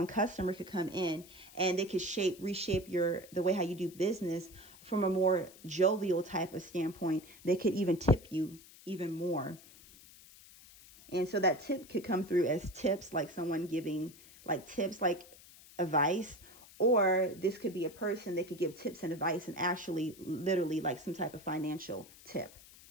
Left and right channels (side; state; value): left; noise; hiss, 21 dB below the sound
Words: customer could come in and they could reshape the way how you do business from a more jovial type of standpoint. They could even tip you even more. And so that tip could come through as tips, like someone giving like tips, like advice, or this could be a person that could give tips and advice and actually literally like some type of financial tip.